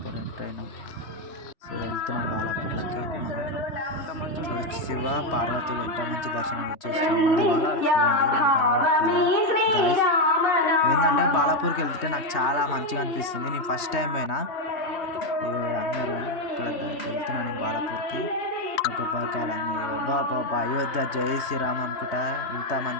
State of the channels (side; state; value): right; late; 3.1 ms